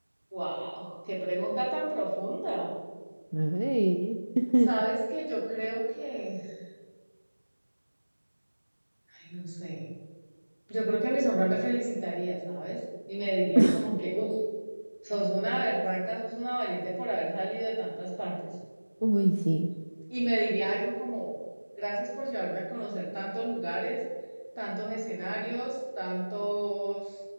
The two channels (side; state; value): both; inverted; correlation -1.00